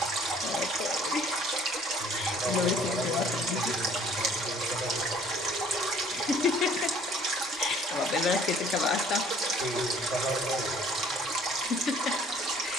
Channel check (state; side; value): normal; both; correlation 0.56